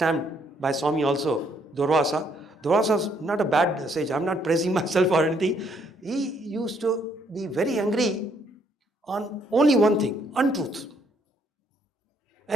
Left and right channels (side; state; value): both; normal; correlation 0.69